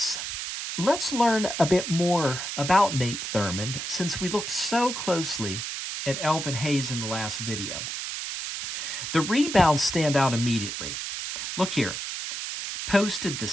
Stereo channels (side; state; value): right; noise; hiss, 5 dB below the sound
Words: let's learn a bit more about Nate Thurmond, since we looked so closely at Elvin Hayes in the last video. The rebounds stand out immediately. Look here. Posted the